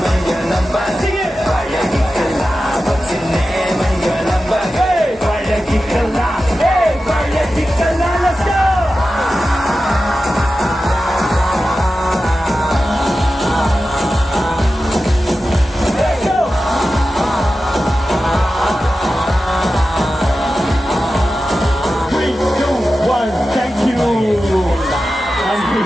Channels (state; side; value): normal; both; correlation 0.93